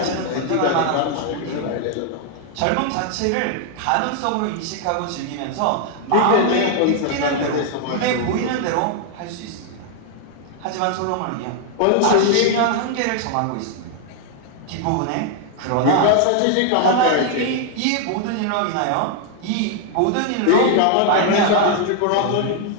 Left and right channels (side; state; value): both; different; correlation 0.00